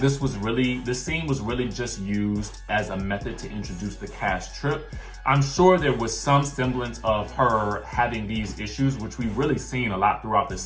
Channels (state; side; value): identical; both; correlation 1.00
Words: scene was really just used as a method to introduce the cash trip. I'm sure there was some semblance of her having these issues, which we've really seen a lot throughout the